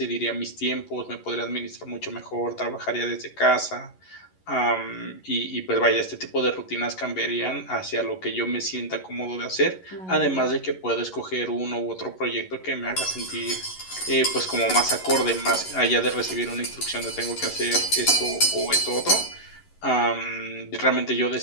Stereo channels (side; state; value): right; late; 11 ms